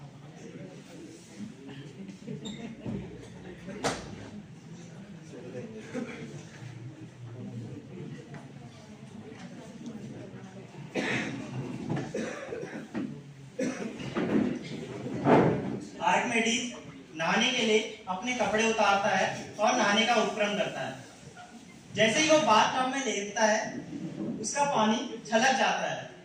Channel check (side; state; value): both; identical; correlation 1.00